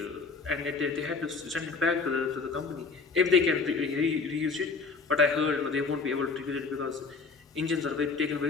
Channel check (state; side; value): quieter; right; 4.5 dB